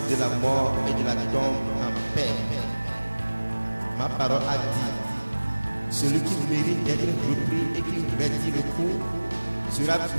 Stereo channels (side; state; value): both; inverted; correlation -1.00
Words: de la mort et de la tombe en paix. Ma parole a dit, celui qui mérite d'être repris et qui retire le coup sera